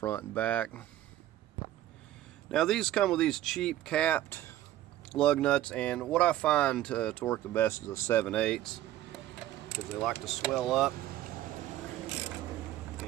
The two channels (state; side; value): quieter; left; 13.6 dB